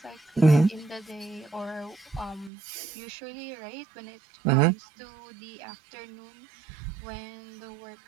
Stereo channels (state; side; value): drops out; left; at 2.5 s